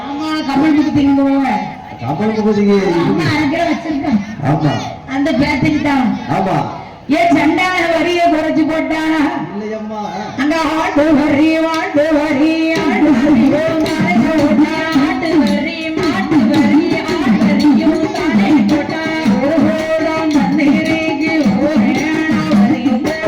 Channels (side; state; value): both; identical; correlation 1.00